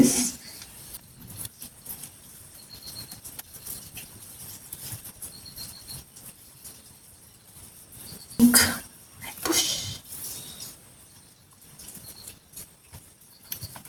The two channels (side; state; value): both; identical; correlation 1.00